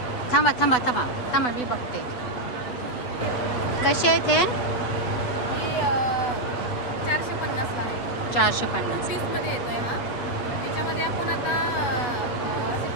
थांबा थांबा थांबा थांबा, मी बघते कसे आहेत हे. 450ला आहे. 450. पीसमध्ये येतोय हा. याच्यामध्ये आपण आता असे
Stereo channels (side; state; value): right; late; 8.1 ms